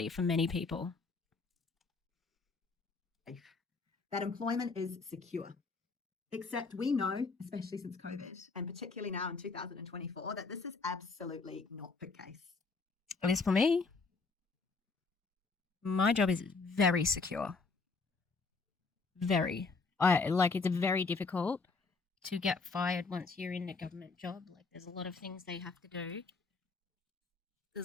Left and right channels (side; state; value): right; quieter; 4.3 dB